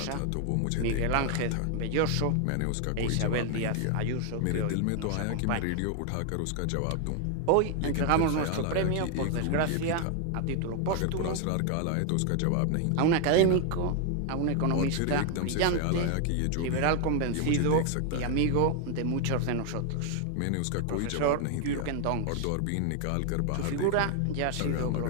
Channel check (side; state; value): both; different; correlation 0.00